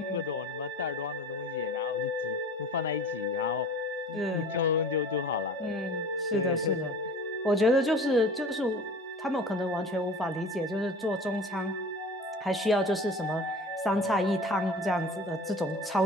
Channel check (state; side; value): normal; both; correlation 0.41